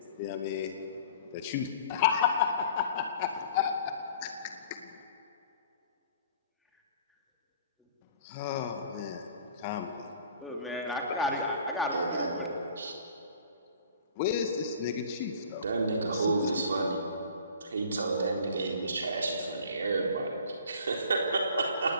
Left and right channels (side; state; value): both; inverted; correlation -0.49